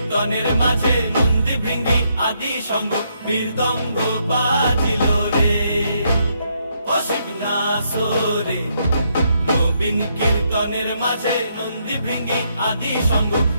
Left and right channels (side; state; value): both; inverted; correlation -0.75